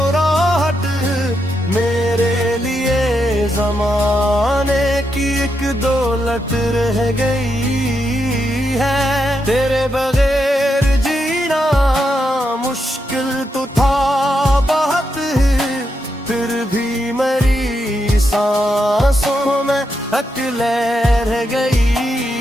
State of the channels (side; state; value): both; normal; correlation 0.83